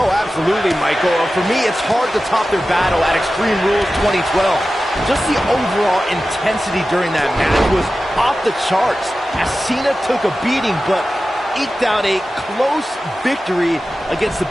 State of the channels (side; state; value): both; normal; correlation 0.94